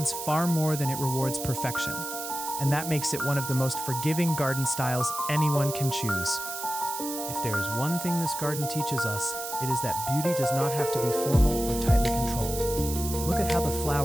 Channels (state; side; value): noise; right; hiss, 7 dB below the sound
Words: far more than it rewards perfection. and that makes it one of the most forgiving garden styles anyone can choose. If there is one thing this garden teaches us, it is that beauty does not have to be formal or tightly controlled. Look at how the